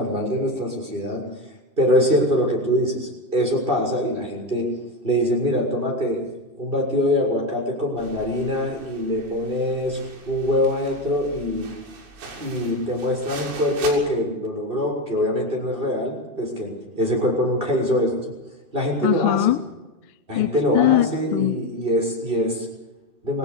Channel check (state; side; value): late; left; 2.5 ms